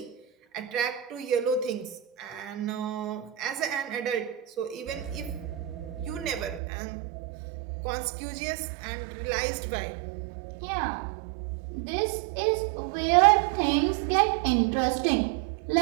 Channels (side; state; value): left; drops out; at 6.6 s